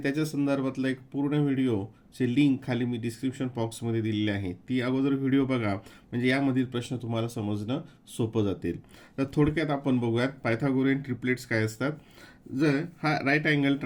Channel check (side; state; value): both; identical; correlation 1.00